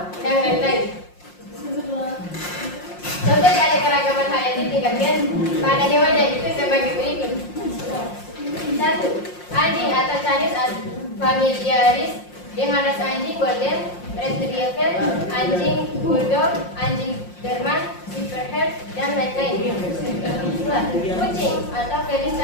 dan lain-lain. Contoh keanekaragaman hayati tingkat gen pada hewan yaitu sebagai berikut. 1. Anjing atau Canis familiaris dengan ras anjing golden retriever, anjing bulldog, anjing Berman, silverhair, dan lain-lain. 2. Kucing atau Felis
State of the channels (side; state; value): right; late; 5.6 ms